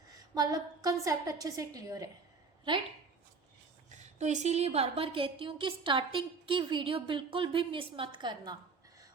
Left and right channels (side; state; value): left; quieter; 4.6 dB